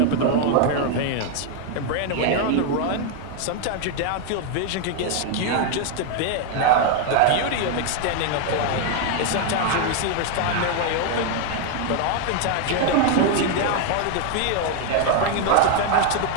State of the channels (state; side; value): different; both; correlation 0.00